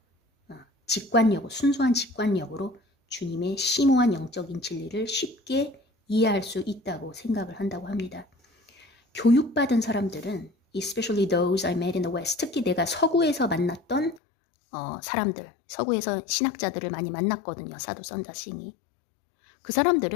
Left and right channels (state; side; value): drops out; right; at 14.2 s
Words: 순수한 직관력으로 주님의 심오한 영적인 진리를 쉽게 이해할 수 있다고 생각을 한다고 합니다. 교육받은 사람들은 especially those I met in the West, 특히 내가 서구에서 만났던 사람들, 서구에서 신학자들을 많이 만났거든요. 사도 선자싱이. 그